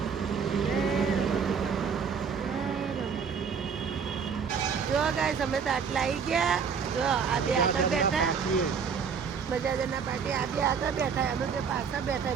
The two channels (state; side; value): quieter; left; 6.3 dB